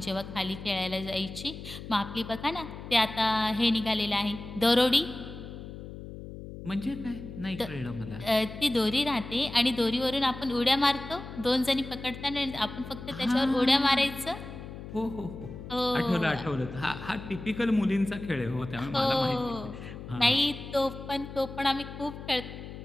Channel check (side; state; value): left; noise; hum, 11 dB below the sound